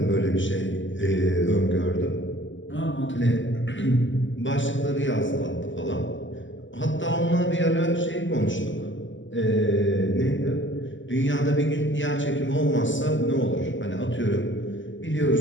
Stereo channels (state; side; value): late; right; 0.55 ms